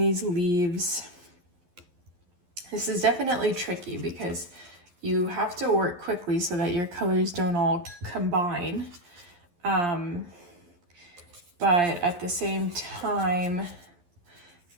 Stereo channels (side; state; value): left; late; 11 ms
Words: leaves. This is definitely tricky because you have to work quickly so that your colors don't all combine. But at the same time,